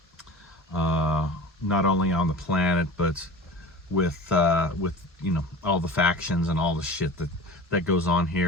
not only on the planet, but with all the factions and all the shit that goes on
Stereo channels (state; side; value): normal; both; correlation 0.36